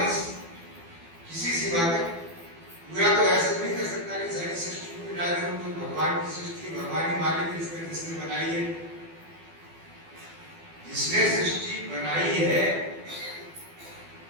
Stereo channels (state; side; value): late; left; 12 ms